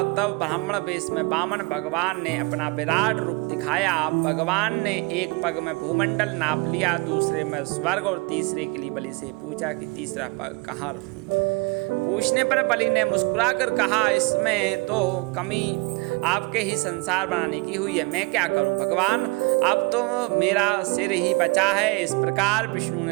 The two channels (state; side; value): quieter; left; 27.6 dB